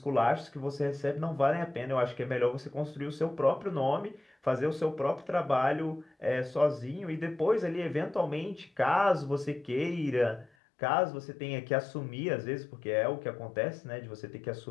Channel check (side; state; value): right; drops out; at 10.5 s